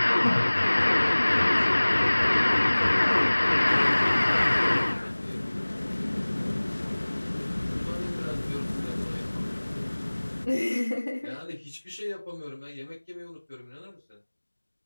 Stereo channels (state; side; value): inverted; both; correlation -1.00